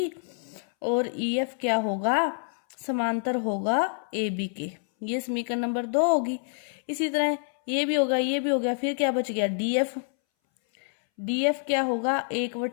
और EF क्या होगा, समांतर होगा AB के। ये समीकरण नंबर 2 होगी। इसी तरह ये भी होगा, ये भी हो गया। फिर क्या बच गया, DF क्या होगा,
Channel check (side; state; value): right; silent; 60 dB below the other